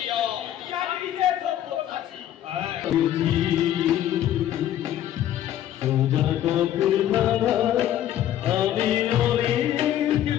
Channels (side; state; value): right; quieter; 11.7 dB